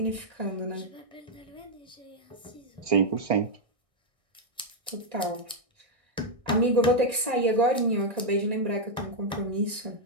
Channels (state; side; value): late; left; 1.6 ms